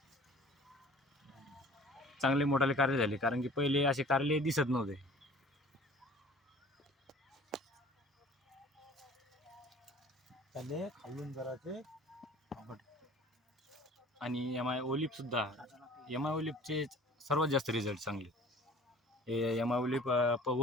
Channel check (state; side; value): normal; both; correlation 0.47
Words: चांगले मोठाले कारले झाले, कारण की पहिले असे कारले दिसत नव्हते. त्याले खालून जराचे आणि एम-आय ओलिप सुद्धा, एम-आय ओलिपचे सर्वात जास्त रिझल्ट चांगले. हे एम-आय ओलिप